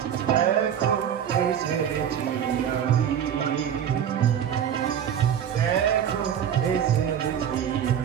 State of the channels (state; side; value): quieter; left; 9.0 dB